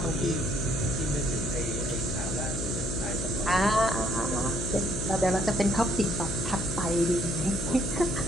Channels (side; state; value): left; noise; hum, 4 dB below the sound